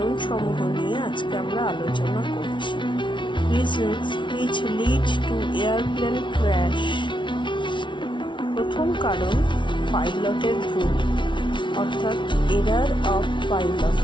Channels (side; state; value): right; late; 0.24 ms